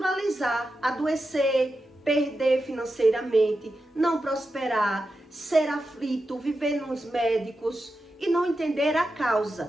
adoecer, perder financeiramente, não prosperar, ser aflito, viver nos médicos e não entender a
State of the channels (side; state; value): both; normal; correlation 0.90